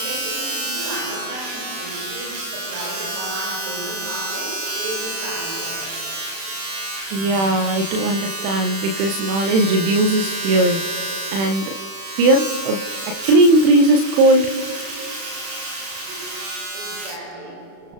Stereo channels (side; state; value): left; late; 36 ms